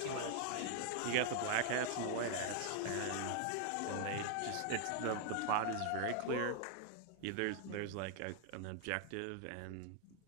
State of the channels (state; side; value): different; both; correlation 0.00